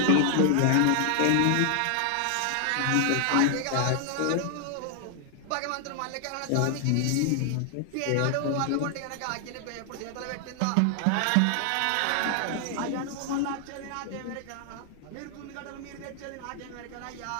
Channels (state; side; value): different; both; correlation 0.00